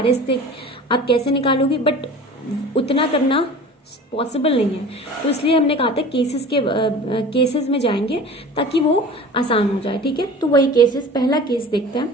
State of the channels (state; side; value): normal; both; correlation 0.39